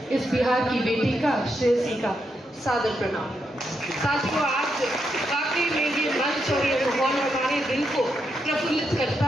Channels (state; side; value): normal; both; correlation 0.82